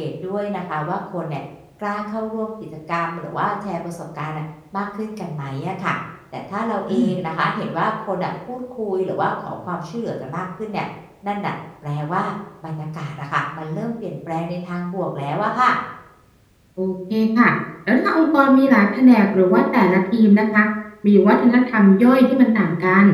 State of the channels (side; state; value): both; identical; correlation 1.00